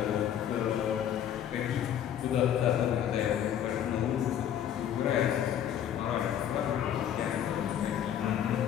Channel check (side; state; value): right; quieter; 9.9 dB